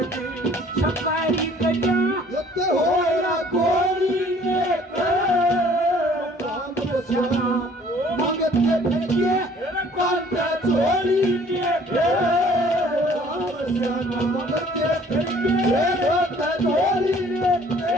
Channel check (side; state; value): both; normal; correlation 0.55